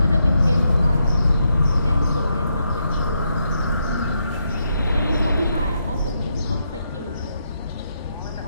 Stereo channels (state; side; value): inverted; both; correlation -0.81